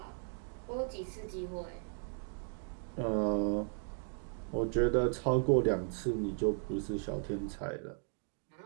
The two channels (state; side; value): silent; left; 54 dB below the other